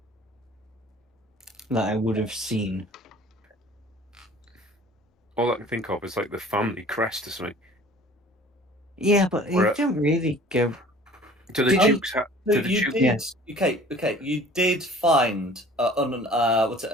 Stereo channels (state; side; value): normal; both; correlation 0.48